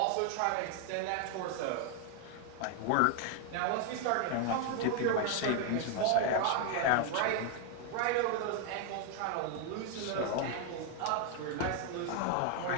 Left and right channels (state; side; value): different; both; correlation 0.01